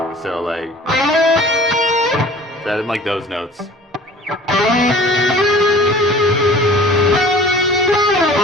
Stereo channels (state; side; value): normal; both; correlation 0.46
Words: So like that in like those notes.